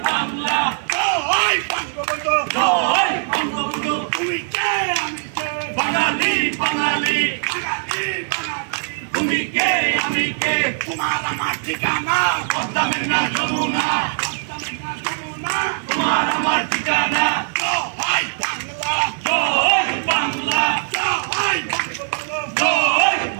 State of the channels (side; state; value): left; silent; digital silence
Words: বাংলা, জয় বঙ্গবন্ধু, জয় বঙ্গবন্ধু। তুমি কে আমি কে, বাঙালি বাঙালি, বাঙালি বাঙালি। তুমি কে আমি কে, তোমার আমার ঠিকানা পদ্মা মেঘনা যমুনা, পদ্মা মেঘনা যমুনা, তোমার আমার ঠিকানা। জয় বাংলা, জয় বাংলা, জয় বঙ্গবন্ধু, জয়